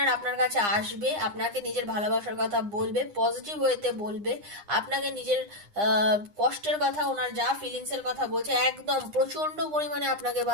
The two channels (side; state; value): left; late; 9.8 ms